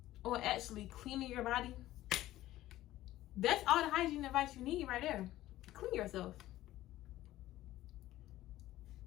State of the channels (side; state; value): right; quieter; 15.0 dB